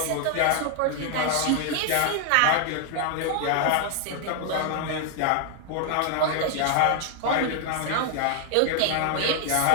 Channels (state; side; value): different; both; correlation 0.00